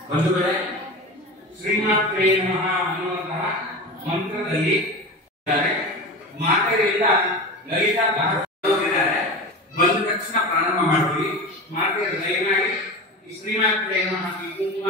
ಬಂಧುಗಳೇ, ಶ್ರೀಮಾತ್ರೇ ನಮಃ ಅನ್ನುವಂತಹ ಮಂತ್ರದಲ್ಲಿ ಮಾತೆಯರಿಂದ ಲಲಿತಾ ಭಾಗವತಿದ್ದಾರೆ. ಬಂದ ತಕ್ಷಣ ಪ್ರಾರಂಭ ಮಾಡ್ತೀವಿ. ಮಾತೆಯ ದಯಮಾಡಿ ಶ್ರೀಮಾತ್ರೇ ನಮಃ ಈ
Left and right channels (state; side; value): normal; both; correlation 0.29